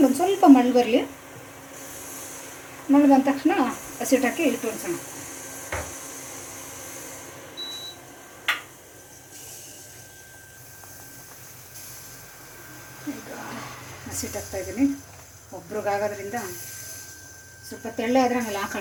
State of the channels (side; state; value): both; identical; correlation 1.00